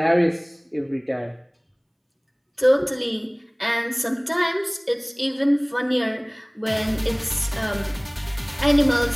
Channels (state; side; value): identical; both; correlation 1.00